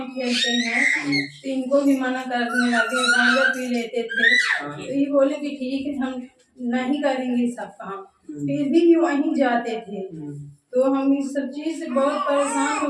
खेलते हैं, तो इनको भी मना करने लगे, गांजा पी लेते थे। तो ये बोले कि ठीक है हम नहीं करेंगे सब काम, फिर भी वहीं जाते थे। तो हम इस सब चीज से बहुत परेशान हो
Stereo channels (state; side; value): identical; both; correlation 1.00